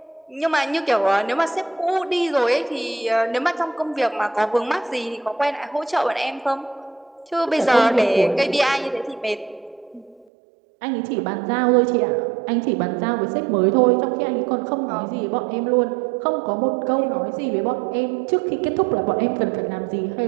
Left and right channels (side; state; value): left; drops out; at 10.2 s